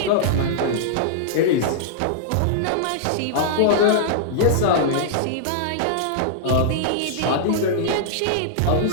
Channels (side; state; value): both; different; correlation -0.02